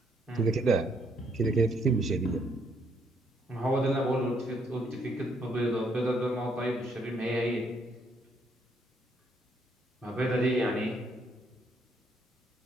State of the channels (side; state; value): both; normal; correlation 0.71